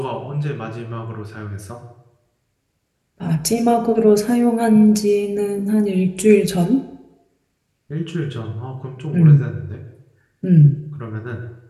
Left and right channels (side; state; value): both; identical; correlation 1.00